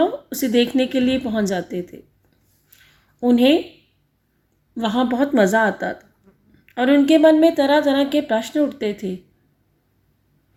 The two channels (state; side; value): identical; both; correlation 1.00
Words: उसे देखने के लिए पहुंच जाते थे। उन्हें वहाँ बहुत मज़ा आता था और उनके मन में तरह तरह के प्रश्न उठते थे